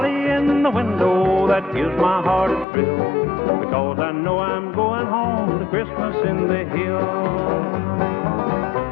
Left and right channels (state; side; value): drops out; right; at 2.7 s